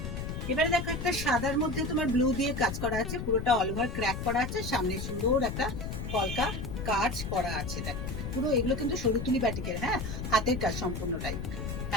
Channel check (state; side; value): noise; left; rumble, 5 dB below the sound